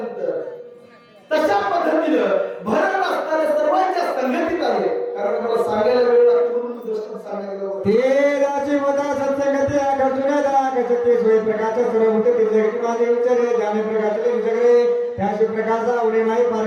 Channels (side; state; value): both; identical; correlation 1.00